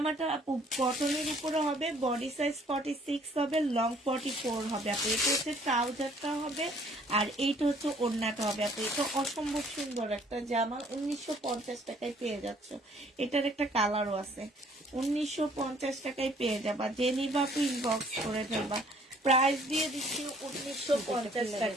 আপু কটনের উপরে হবে বডি সাইজ 46 হবে লং 44 হবে আপু এটা হচ্ছে ট্রাউজারটা হবে আর এইটা হচ্ছে ওড়নাটা হবে আপু এটা অসম্ভব সুন্দর একটা জামা 1950 টাকায় পেয়ে যাচ্ছ এটার একটা কালারও আছে 1950 টাকায় পেয়ে যাবা যে নিবা আপু ইনবক্স করে ফেলবা প্রাইস দিয়ে দিচ্ছি 1950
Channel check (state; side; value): normal; both; correlation 0.59